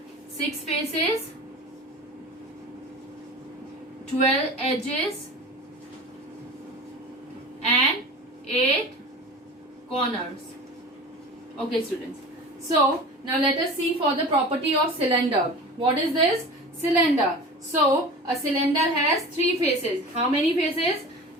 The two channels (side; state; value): both; normal; correlation 0.35